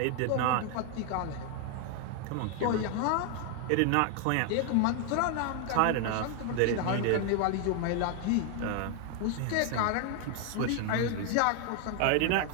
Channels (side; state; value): both; different; correlation 0.00